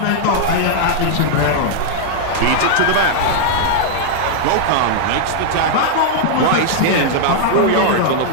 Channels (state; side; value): different; both; correlation -0.01